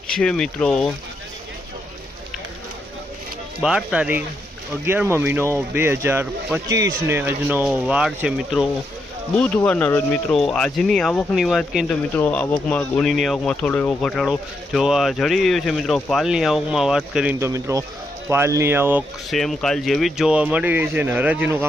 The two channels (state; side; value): normal; both; correlation 0.81